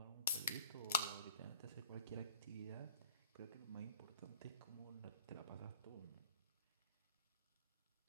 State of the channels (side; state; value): both; inverted; correlation -0.47